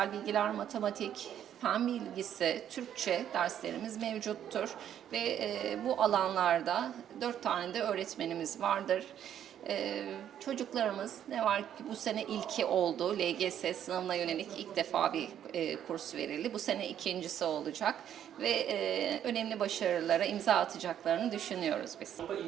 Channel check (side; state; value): left; quieter; 10.1 dB